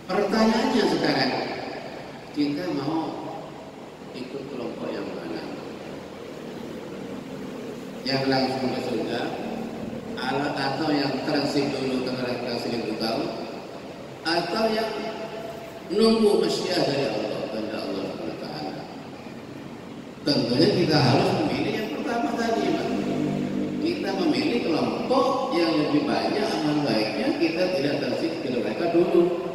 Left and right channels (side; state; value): both; identical; correlation 1.00